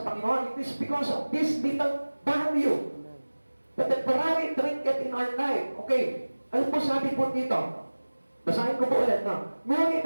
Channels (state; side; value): inverted; both; correlation -1.00